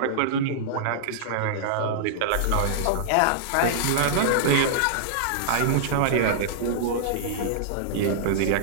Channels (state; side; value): different; both; correlation -0.02